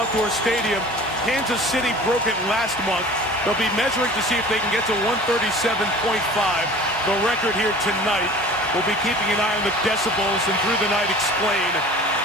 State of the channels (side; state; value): both; normal; correlation 0.43